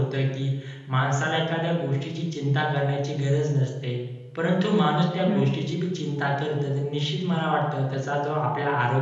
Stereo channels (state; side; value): identical; both; correlation 1.00